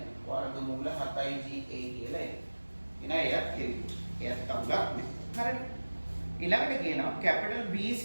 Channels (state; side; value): inverted; both; correlation -1.00